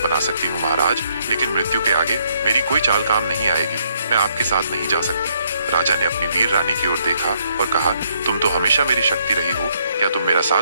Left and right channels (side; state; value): both; inverted; correlation -0.71